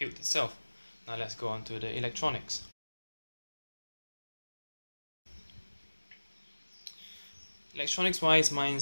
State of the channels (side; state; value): both; inverted; correlation -1.00